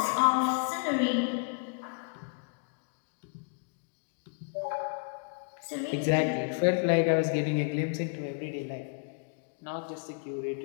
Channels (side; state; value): right; quieter; 39.7 dB